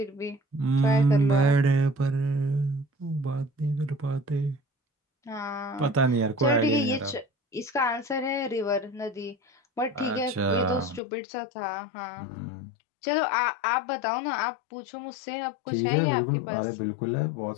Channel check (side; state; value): right; drops out; at 11.0 s